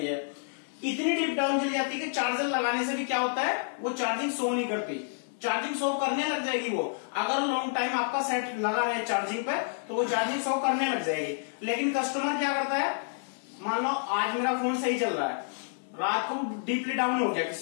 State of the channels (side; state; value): right; silent; 55 dB below the other